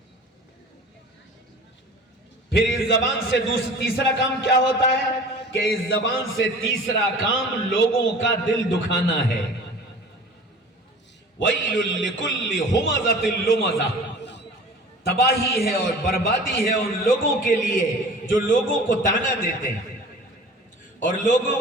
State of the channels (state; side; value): normal; both; correlation 0.42